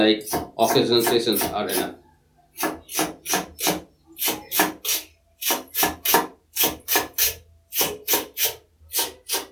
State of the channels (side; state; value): both; identical; correlation 1.00